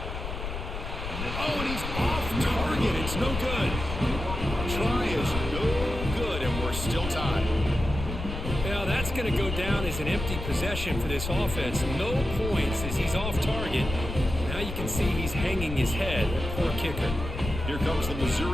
Oh, and he's off target. It's no good. Try is no good, and we're still tied. Now that's going to go down as an empty possession for this offense. No points as he's off target. Now you can see he's hanging his head. Poor kicker. Here comes the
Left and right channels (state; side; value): noise; left; rumble, 6 dB below the sound